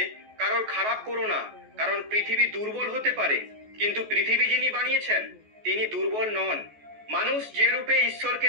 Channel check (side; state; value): left; late; 14 ms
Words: কারোর খারাপ করো না, কারণ পৃথিবী দুর্বল হতে পারে, কিন্তু পৃথিবী যিনি বানিয়েছেন তিনি দুর্বল নন। মানুষ যে রূপে ঈশ্বরকে